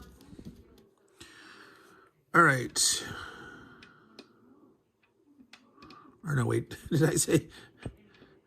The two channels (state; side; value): identical; both; correlation 1.00